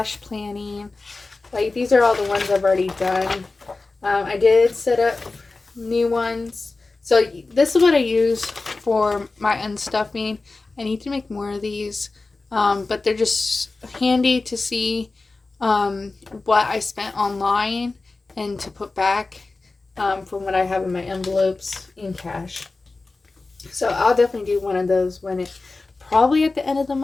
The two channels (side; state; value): right; quieter; 3.5 dB